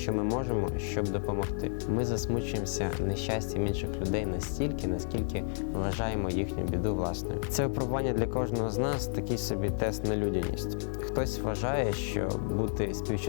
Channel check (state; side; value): silent; right; digital silence